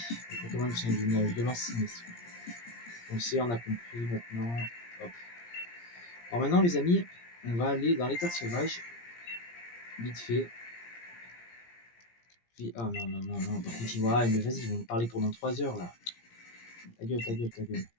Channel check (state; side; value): late; right; 17 ms